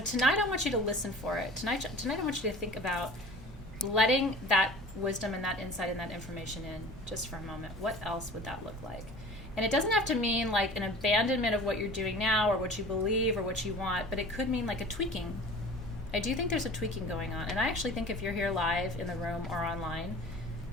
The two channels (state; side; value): normal; both; correlation 0.41